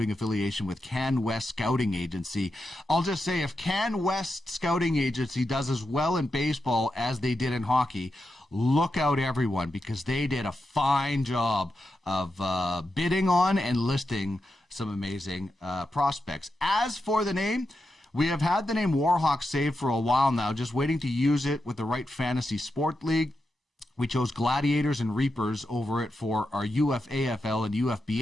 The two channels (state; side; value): normal; both; correlation 0.88